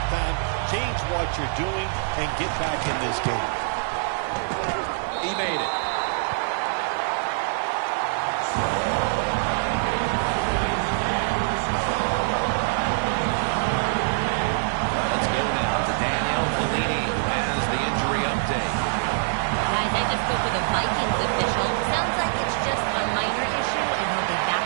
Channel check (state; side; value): silent; left; digital silence